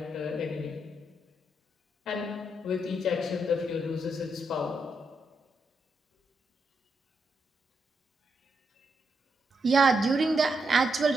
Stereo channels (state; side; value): normal; both; correlation 0.82